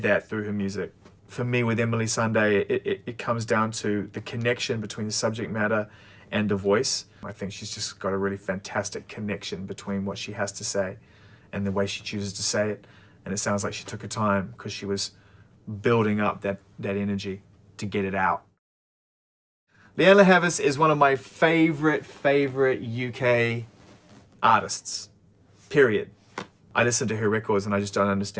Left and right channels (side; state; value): both; identical; correlation 1.00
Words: that through her music. For me, with Emily Sandé, it comes down to the connection between the subject matter and the voice. I think she's just got a really fantastic connection between what she has to say and the way she chooses to say it. And it sounds like she took her time because she was building up that energy to get it out. Leonie Haas is one of my favorite UK artists, period. I listen to her records and I just don't